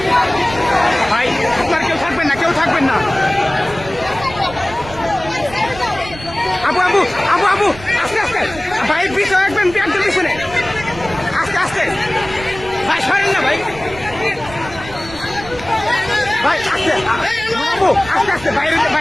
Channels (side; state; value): right; noise; rumble, 15 dB below the sound